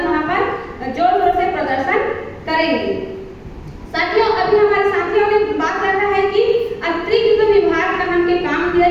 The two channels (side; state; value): both; identical; correlation 1.00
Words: वहाँ पर जोर शोर से प्रदर्शन करेंगे। साथियों, अभी हमारे साथियों ने बात करना है कि अतिरिक्त विभाग का हमके काम दिया